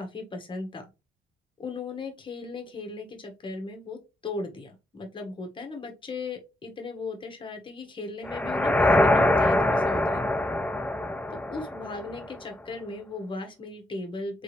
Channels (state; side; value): normal; both; correlation 0.80